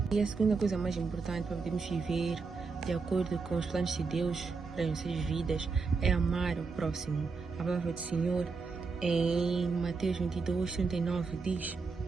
E a segunda coisa mais importante para podermos viver de acordo com os planos de Deus para as nossas vidas é amar o próximo. A palavra do Senhor em Mateus 22, 39 diz:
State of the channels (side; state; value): left; quieter; 4.6 dB